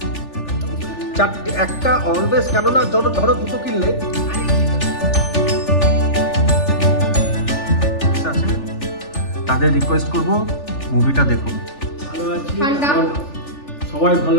চারটে, একটা অলওয়েজ, কেননা ধরো দুটো কিনলে তাদের রিকোয়েস্ট করব মুভিটা দেখুন। ভালো আছি, সবাই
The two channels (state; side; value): late; right; 3.4 ms